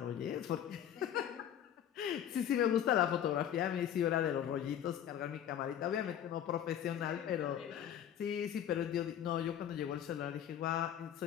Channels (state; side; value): quieter; right; 10.0 dB